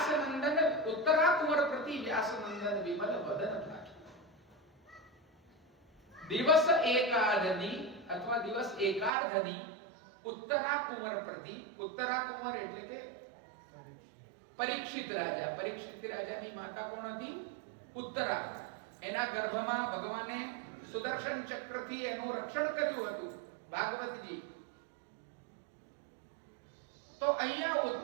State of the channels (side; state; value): left; drops out; at 9.1 s